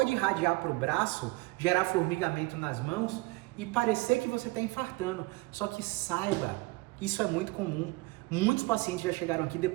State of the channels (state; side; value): quieter; left; 22.8 dB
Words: irradiar para o braço, gerar formigamento nas mãos e parecer que você está infartando. Só que saiba, isso é muito comum. Muitos pacientes já chegaram aqui